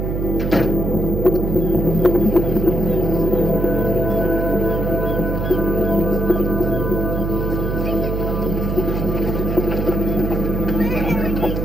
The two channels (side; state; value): right; noise; hum, 2 dB below the sound